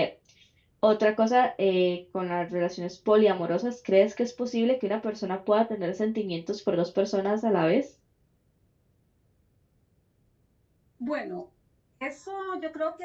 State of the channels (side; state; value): both; identical; correlation 1.00